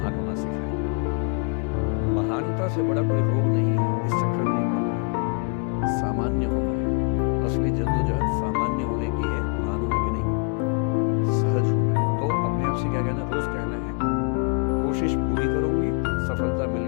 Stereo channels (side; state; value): right; quieter; 35.9 dB